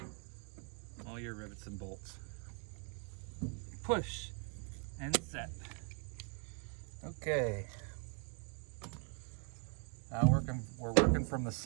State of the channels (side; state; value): left; quieter; 39.3 dB